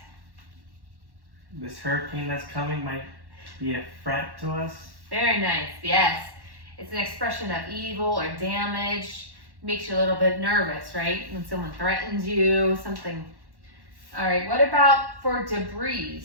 This hurricane that's coming might be a threat to us. Very nice. Yes. It's an expression of evil or damage. Makes you a little bit nervous, right? When someone threatens you, something. All right. What about for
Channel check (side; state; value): left; late; 1.1 ms